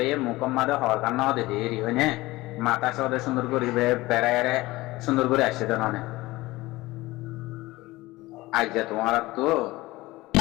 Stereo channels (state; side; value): quieter; right; 19.4 dB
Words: মুকম্মাদে হওয়ার কারণ দে দেরি হয় না মাথা সদে সুন্দর করে বেড়ায় সুন্দর করে আসছে তো ননে আজ তোমার তো